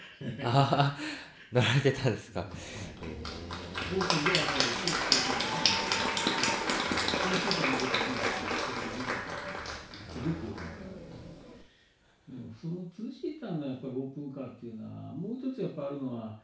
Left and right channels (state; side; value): identical; both; correlation 1.00